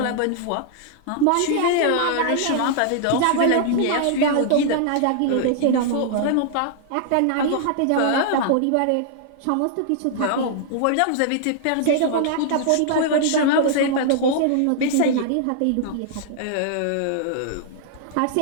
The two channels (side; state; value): both; different; correlation -0.01